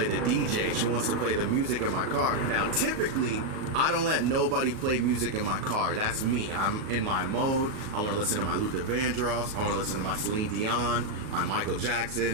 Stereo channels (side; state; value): left; late; 38 ms